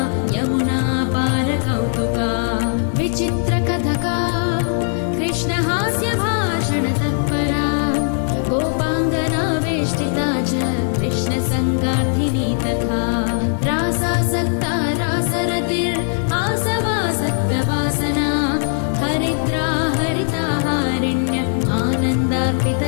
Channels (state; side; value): silent; right; digital silence